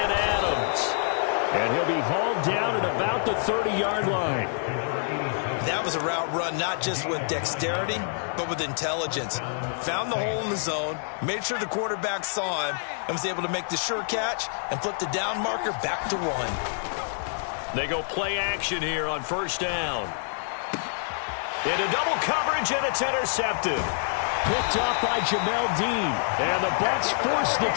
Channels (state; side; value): silent; right; digital silence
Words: Adams. And he'll be hauled down at about the 30-yard line. That was a route run not just with dexterity, but with intelligence. Found the hole in the zone, made sure the quarterback saw him, and was able to make the sure catch and flip the down marker back to 1. They go play action here on first down. Into double coverage, and it's intercepted. Picked off by Jamel Dean. And the Bucs force the